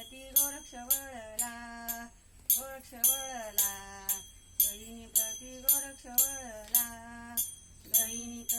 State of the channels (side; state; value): both; identical; correlation 1.00